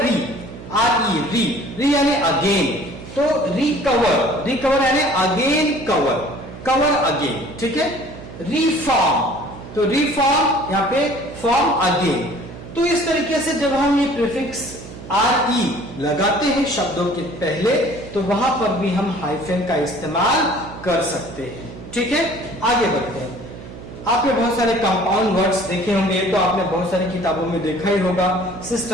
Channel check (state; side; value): noise; right; hum, 14 dB below the sound